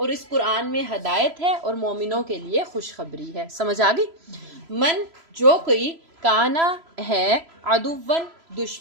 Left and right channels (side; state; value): left; late; 3.0 ms